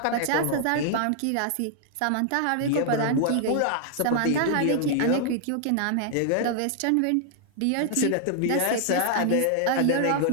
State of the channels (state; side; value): different; both; correlation -0.01